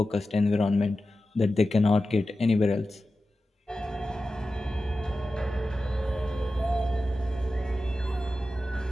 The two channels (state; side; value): normal; both; correlation 0.93